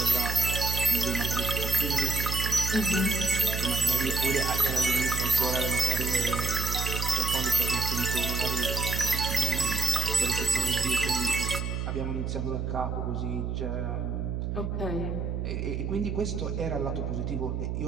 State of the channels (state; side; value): noise; right; hum, 2 dB below the sound